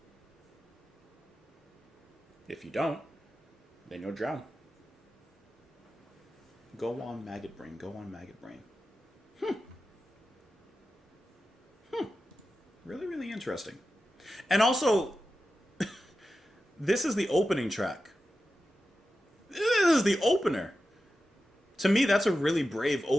If you don't, then you'll drown. Go on, maggot brain. Go on, maggot brain. Really, really interesting. And also, this is the opening track. This is the opener. To me, that's a really brave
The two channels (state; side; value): normal; both; correlation 0.92